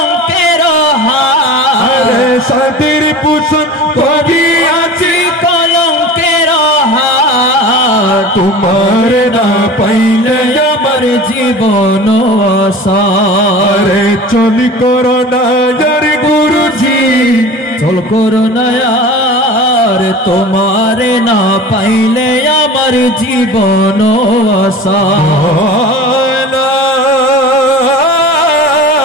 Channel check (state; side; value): normal; both; correlation 0.37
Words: हार अरे सातेरी पूषण करी आजी कलंकेर हार तुम्हारे ना पाइले আমার জীবন আসার चल करो ना यार गुरुजी চল করো না আর তোমারে না পাইলে আমার জীবন আসার